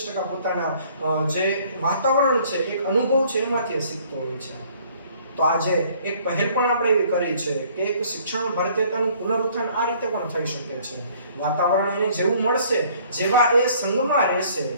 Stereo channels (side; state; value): both; inverted; correlation -0.58